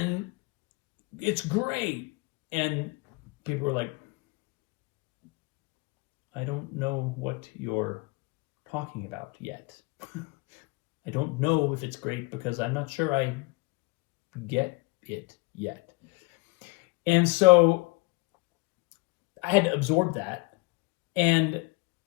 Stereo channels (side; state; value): right; quieter; 26.0 dB